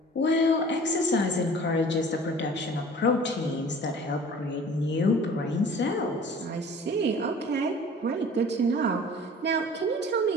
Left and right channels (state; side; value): normal; both; correlation 0.46